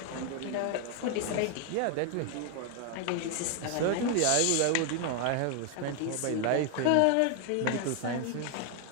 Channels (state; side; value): different; both; correlation 0.00